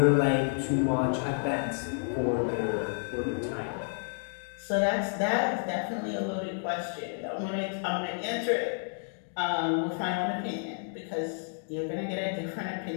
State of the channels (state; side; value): silent; right; 55 dB below the other